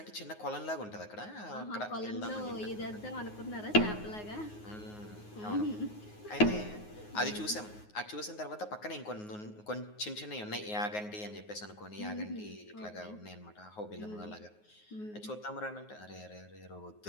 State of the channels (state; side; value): late; right; 9.5 ms